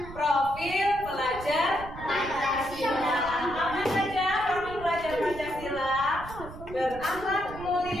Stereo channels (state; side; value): noise; right; rumble, 13 dB below the sound